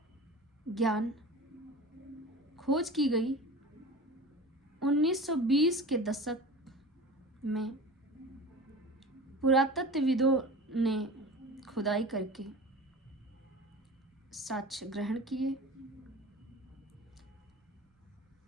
ज्ञान खोज की गई 1920 के दशक में। पुरातत्वविदों ने खुदाई करके साक्ष्य ग्रहण किए।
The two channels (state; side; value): normal; both; correlation 0.35